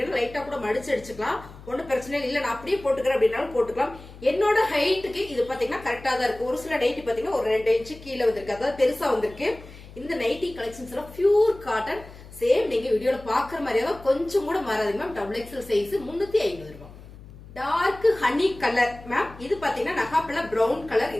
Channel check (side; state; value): left; noise; hum, 18 dB below the sound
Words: லைட்டா கூட மடிச்சு அடிச்சுக்கலாம். ஒன்னும் பிரச்சனை இல்லை. நான் அப்படியே போட்டுக்கிறேன் அப்படின்னாலும் போட்டுக்கலாம். என்னோட ஹைட்டுக்கு இது பாத்தீங்கன்னா கரெக்டா தான் இருக்கு. ஒரு சில நைட்டி பாத்தீங்கன்னா ஒரு 2 இன்ச்சு கீழே வந்திருக்கு, அதாவது பெருசா வந்திருக்கு. இந்த நைட்டி கலெக்ஷன்ஸ் எல்லாம் பியூர் காட்டன். சேம் நீங்க வீடியோல பாக்குற மாதிரியே தான், கொஞ்சம் கூட மாறாது மேம். டபுள் எக்ஸல் சைஸ் 350 ரூபாய். Dark honey colour ma'am. இது பாத்தீங்கன்னா நகாப்பழ பிரவுன் கலர்.